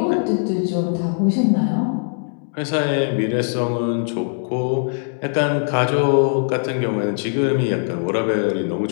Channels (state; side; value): silent; right; digital silence